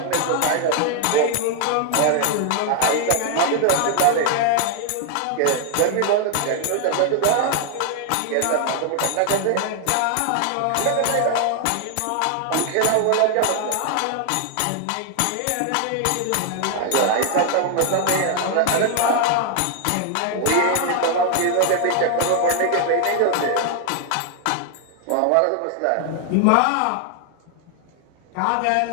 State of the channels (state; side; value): different; both; correlation 0.00